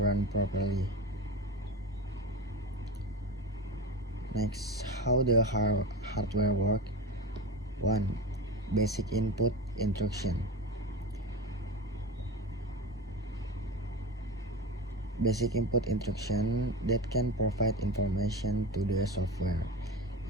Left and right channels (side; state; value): both; normal; correlation 0.26